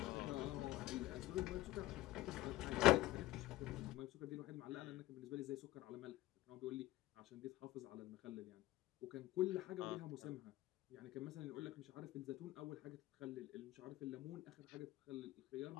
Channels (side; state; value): right; quieter; 16.7 dB